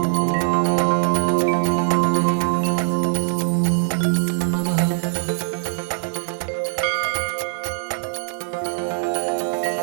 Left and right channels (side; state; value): left; silent; 56 dB below the other